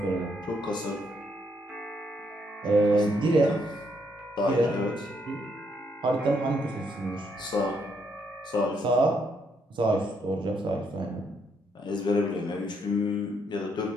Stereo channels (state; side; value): normal; both; correlation 0.74